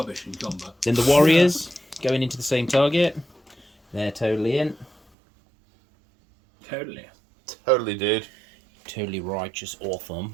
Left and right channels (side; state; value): left; drops out; at 5.0 s